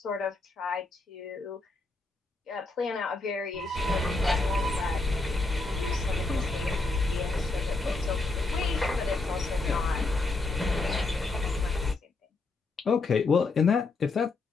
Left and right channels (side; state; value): right; quieter; 3.4 dB